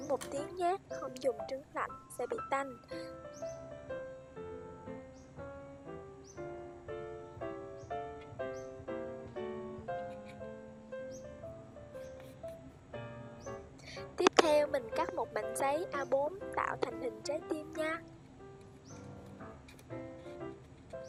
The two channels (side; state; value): both; identical; correlation 1.00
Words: 1 tiếng nhé, không dùng trứng lạnh sẽ bị tanh. Tiếp theo mình cắt một mảnh giấy A4 tạo thành hình trái tim nha.